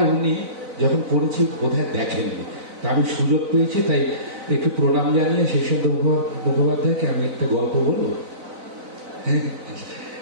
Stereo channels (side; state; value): left; late; 4.0 ms